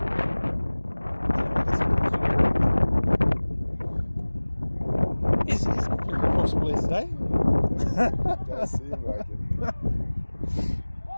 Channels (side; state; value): both; inverted; correlation -1.00